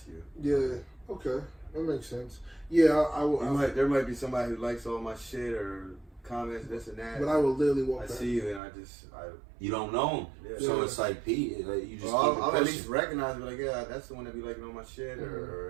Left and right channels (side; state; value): left; drops out; at 8.6 s